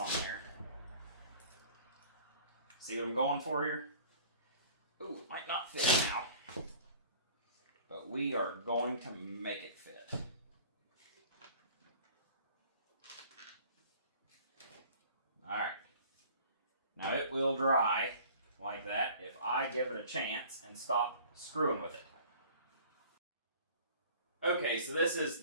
there. See what I'm going for here? Ooh, it might not fit now. But we are going to make it fit. Alright. Now it will dry like that if I give it a chance and stop screwing with it. Okay, so this is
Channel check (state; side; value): inverted; both; correlation -0.48